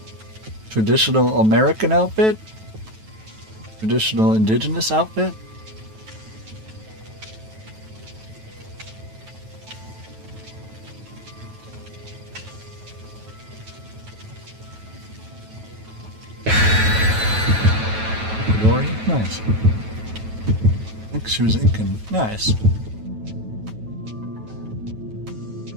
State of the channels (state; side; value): late; left; 9.2 ms